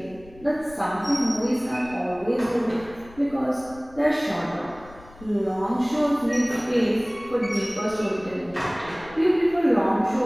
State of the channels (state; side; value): noise; left; rumble, 22 dB below the sound